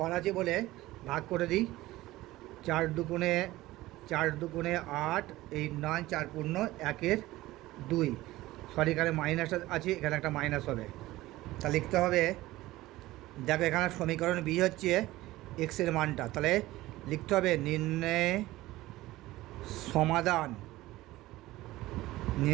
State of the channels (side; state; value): left; quieter; 17.5 dB